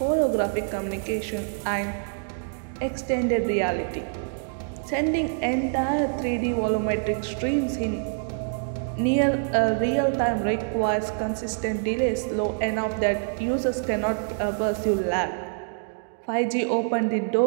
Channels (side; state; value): left; silent; digital silence